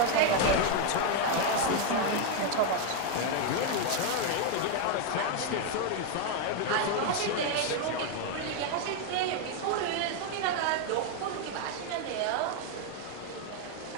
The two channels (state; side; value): different; both; correlation 0.01